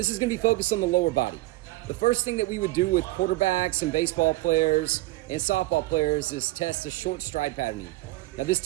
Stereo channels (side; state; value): left; quieter; 19.1 dB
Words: is going to be focused on the lower body. The first thing that we would do with quarterbacks and baseball players and softball players is test a short stride patterning. Now this